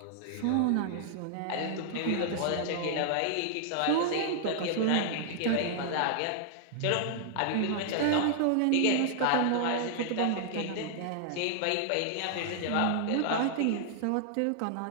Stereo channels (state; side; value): different; both; correlation -0.01